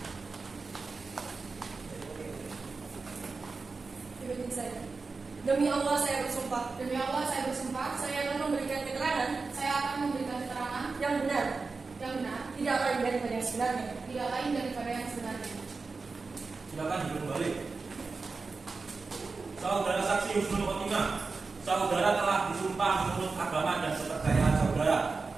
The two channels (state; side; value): quieter; left; 4.2 dB